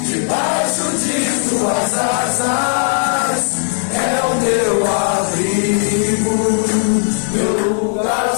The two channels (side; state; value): right; silent; 69 dB below the other